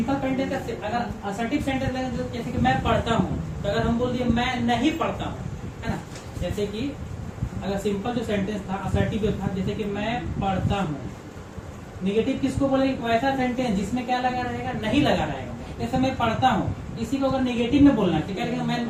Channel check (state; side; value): identical; both; correlation 1.00